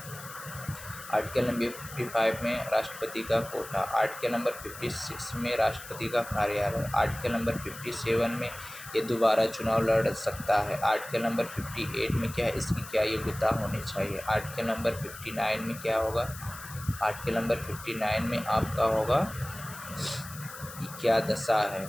article number 55 में राष्ट्रपति का कोटा। आर्टिकल नंबर 56 में राष्ट्रपति का कार्यालय। आर्टिकल नंबर 57 में ये दोबारा चुनाव लड़ सकता है। आर्टिकल नंबर 58 में क्या है, इसकी क्या योग्यता होनी चाहिए। आर्टिकल नंबर 59 में क्या होगा, आर्टिकल नंबर 59 में आपका होगा क्या दशा है,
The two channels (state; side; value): noise; left; hiss, 14 dB below the sound